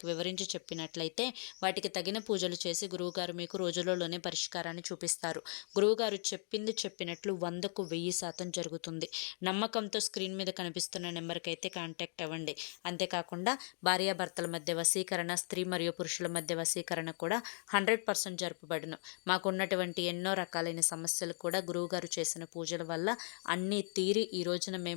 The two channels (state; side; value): silent; right; 53 dB below the other